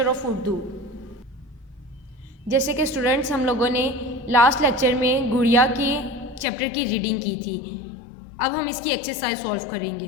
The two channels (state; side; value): drops out; right; at 6.5 s